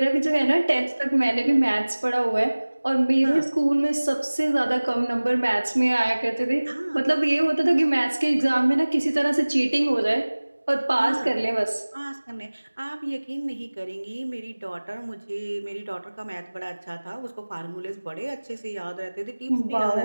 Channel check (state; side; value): inverted; both; correlation -1.00